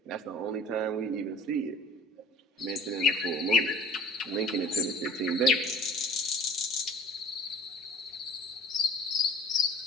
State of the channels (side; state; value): both; normal; correlation 0.46